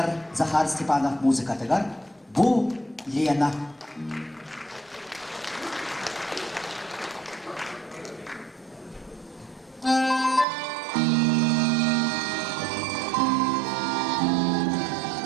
Захар Степанов музыкатыгар Бу Лена.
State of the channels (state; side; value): drops out; left; at 10.5 s